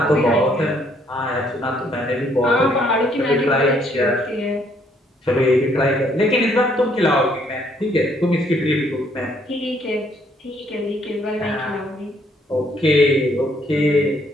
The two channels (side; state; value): both; normal; correlation 0.67